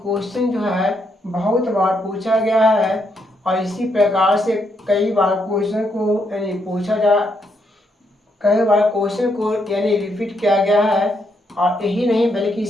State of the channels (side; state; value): both; normal; correlation 0.77